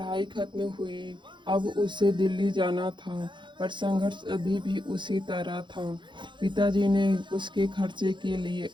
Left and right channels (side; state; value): left; late; 0.23 ms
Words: खत्म हुई, अब उसे दिल्ली जाना था, पर संघर्ष अभी भी उसी तरह था। पिताजी ने उसके खर्चे के लिए